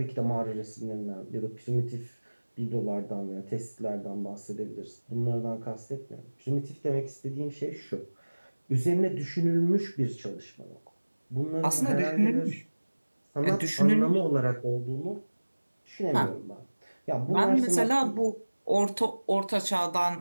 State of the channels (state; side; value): inverted; both; correlation -1.00